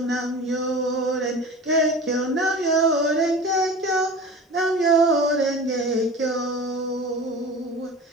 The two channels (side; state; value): both; normal; correlation 0.35